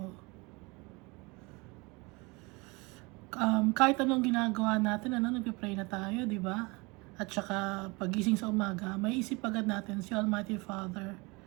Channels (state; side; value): quieter; left; 26.4 dB